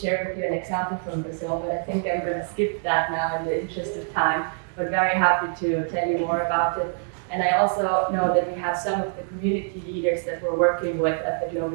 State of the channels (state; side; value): silent; left; 61 dB below the other